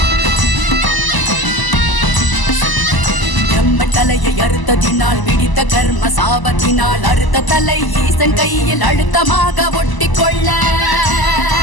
தலையை அறுத்ததினால் பிடித்த கர்ம சாபத்தினால் அறுத்த தலை ஈசன் கையில் அழுத்தமாக ஒட்டிக்கொள்ள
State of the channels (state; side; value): late; right; 1.0 ms